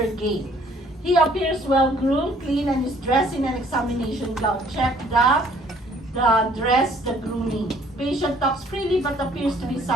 gait. He appears well-groomed, clean, and is dressed in an examination gown. Check the dress, the grooming. Patient talks freely but appears to be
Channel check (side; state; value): both; normal; correlation 0.59